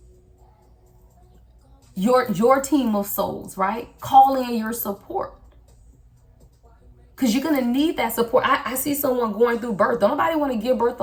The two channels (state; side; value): identical; both; correlation 1.00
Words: Your team of souls, right? Call in your support. Because you're going to need that support. I see someone going through birth. Don't nobody want to give birth